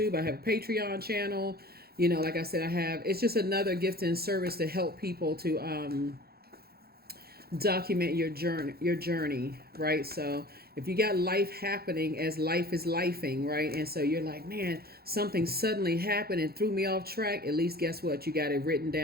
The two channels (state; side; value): late; left; 0.45 ms